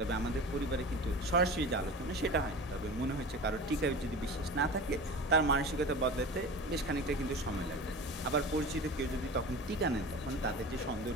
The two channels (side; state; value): both; normal; correlation 0.33